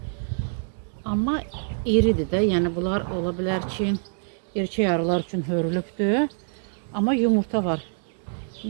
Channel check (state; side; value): silent; left; digital silence